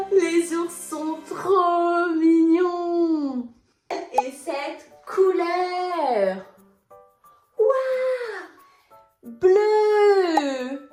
Les ours sont trop mignons! Et cette couleur? Waouh! Bleu!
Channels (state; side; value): identical; both; correlation 1.00